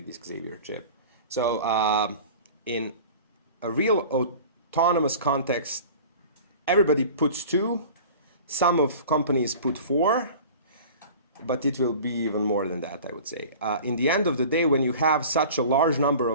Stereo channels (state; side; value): inverted; both; correlation -0.41